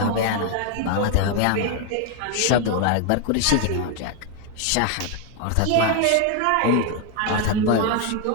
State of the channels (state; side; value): different; both; correlation 0.01